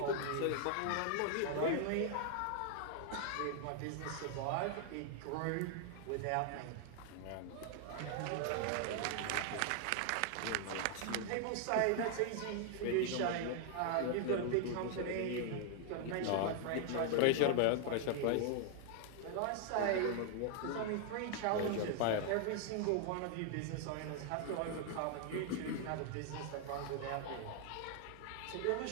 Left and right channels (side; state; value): both; different; correlation 0.00